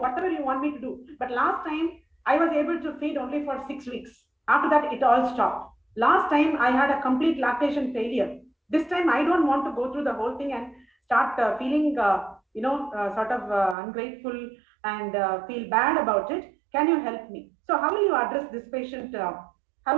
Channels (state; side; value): drops out; left; at 13.8 s